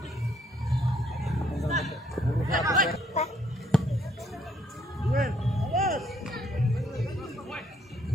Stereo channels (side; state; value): both; normal; correlation 0.68